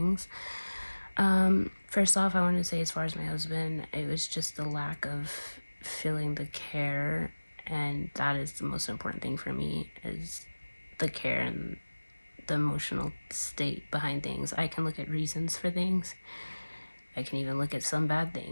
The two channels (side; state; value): both; inverted; correlation -1.00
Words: First off, I wanted to say as far as my husband, it was just the lack of feeling the care, and that is the most important thing for me is the care and the emotional state behind things. I can look at reasons for things. I can even look at some bad